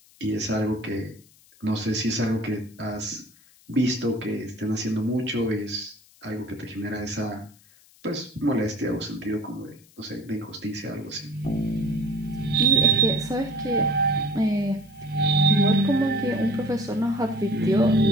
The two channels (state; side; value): noise; left; hiss, 28 dB below the sound